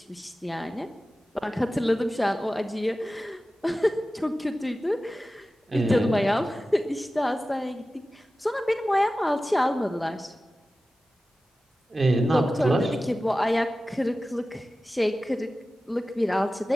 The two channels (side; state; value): both; normal; correlation 0.95